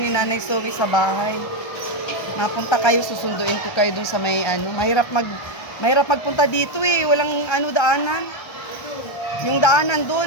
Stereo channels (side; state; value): right; late; 1.3 ms